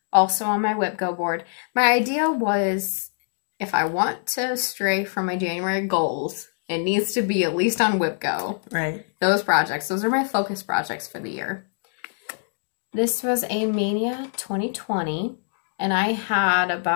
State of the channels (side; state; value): right; silent; digital silence